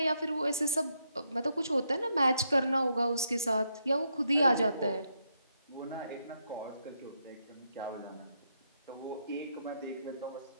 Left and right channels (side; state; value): both; inverted; correlation -0.79